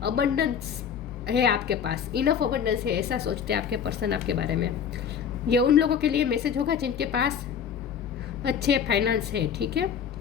अबंडेंस है आपके पास, इनफ अबंडेंस है, ऐसा सोचते हैं आपके पर्सन आपके बारे में। ये उन लोगों के लिए मैसेज होगा जिनके पास अच्छे फाइनेंस है, ठीक है।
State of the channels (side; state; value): right; quieter; 7.8 dB